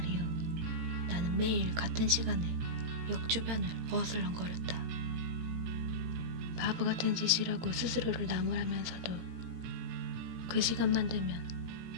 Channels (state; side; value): late; left; 17 ms